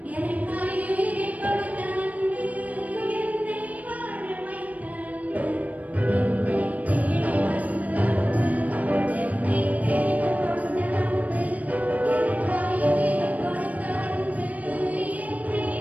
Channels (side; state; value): left; late; 0.071 ms